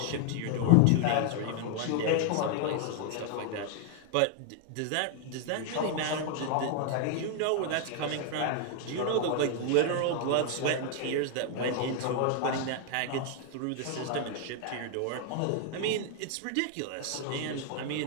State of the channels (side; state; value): both; different; correlation 0.00